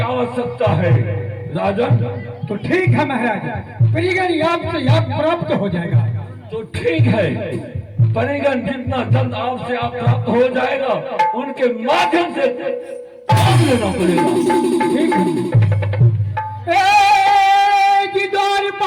आवश्यकता है राजन। तो ठीक है महाराज, परिगण आपसे याद प्राप्त हो जाएगा। तो ठीक है, परिगण जितना जल्द आपसे आप प्राप्त हो जाएगा, उनके माध्यम से काम लेना पड़ेगा। ठीक है।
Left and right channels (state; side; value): identical; both; correlation 1.00